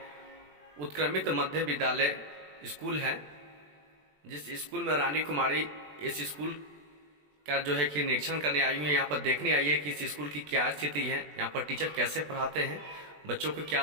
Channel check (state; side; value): late; left; 20 ms